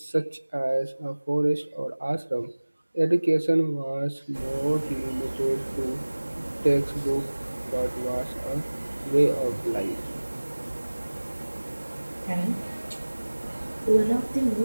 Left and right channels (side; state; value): both; inverted; correlation -1.00